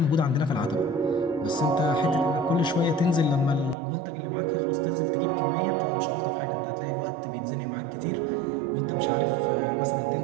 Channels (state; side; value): drops out; left; at 3.8 s